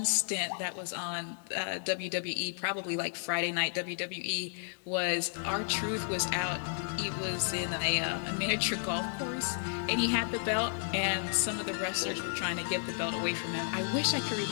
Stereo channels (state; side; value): silent; right; digital silence